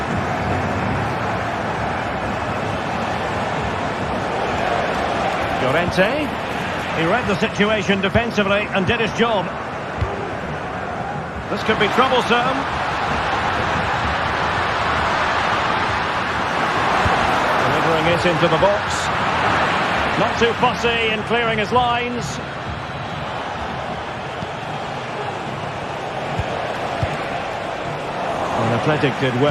Llorente. He read the situation defensively and did his job. This could be troublesome. Delivering it into the box. Not too fussy in clearing his lines. And Athletic did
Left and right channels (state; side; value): identical; both; correlation 1.00